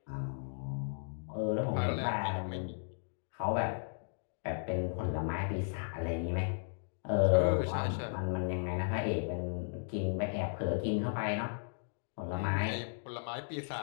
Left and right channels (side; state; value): right; silent; digital silence